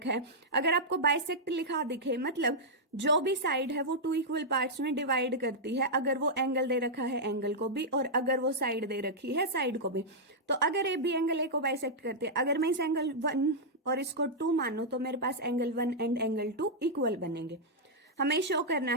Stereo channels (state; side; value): normal; both; correlation -0.07